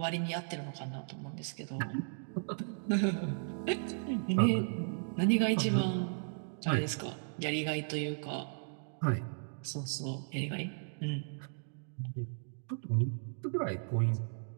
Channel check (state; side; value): silent; left; digital silence